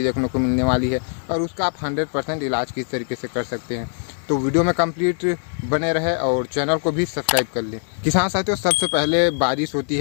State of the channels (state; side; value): silent; right; 56 dB below the other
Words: देखने को मिलने वाली है और उसका आप 100% इलाज किस तरीके से कर सकते हैं। तो वीडियो में कंप्लीट बने रहे और चैनल को भी सब्सक्राइब कर लें। किसान साथियों, सबसे पहले बारिश होती